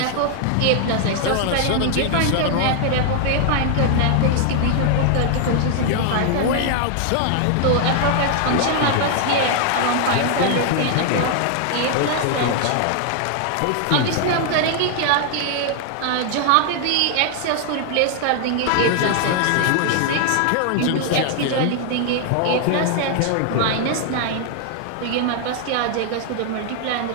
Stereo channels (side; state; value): both; different; correlation 0.00